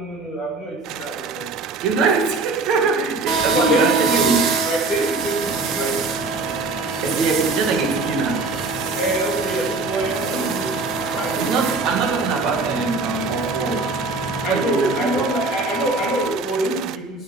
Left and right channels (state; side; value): quieter; left; 3.5 dB